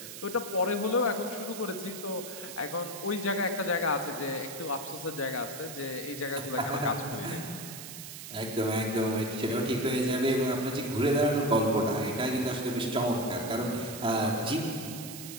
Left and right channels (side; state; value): right; noise; hiss, 11 dB below the sound